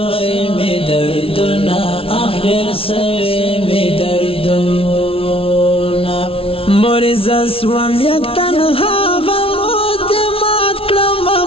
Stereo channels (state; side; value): late; right; 0.26 ms